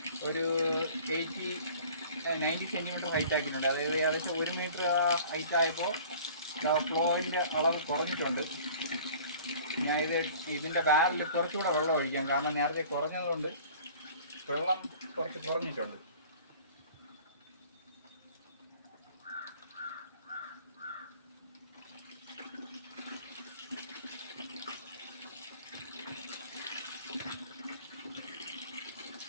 ഒരു 90 സെൻറ്റിമീറ്റർ ഹൈറ്റ് ആക്കിയിട്ടുണ്ട്. അതായത് ഏകദേശം 1 മീറ്റർ ഹൈറ്റ് ആയപ്പോൾ ഫ്ലോയിൻ്റെ അളവ് കുറഞ്ഞിട്ടുണ്ട്. ഞാൻ ഇതിൻ്റെ ബാരലിൽ കുറച്ചുകൂടെ വെള്ളം ഒഴിക്കാം. കാരണം നേരത്തെ കുറഞ്ഞതുകൊണ്ട് വെള്ളം കുറച്ച് കുറഞ്ഞിട്ടുണ്ട്.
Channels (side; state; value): both; inverted; correlation -0.47